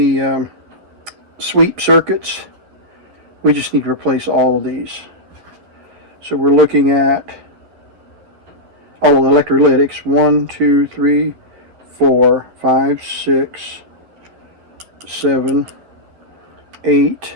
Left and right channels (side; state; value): left; late; 11 ms